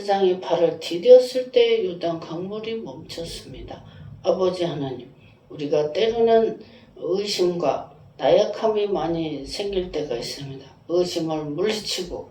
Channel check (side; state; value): both; identical; correlation 1.00